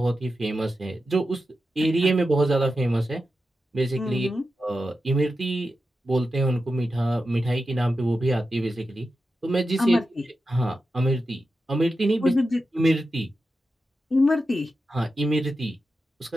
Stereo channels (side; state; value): both; normal; correlation 0.90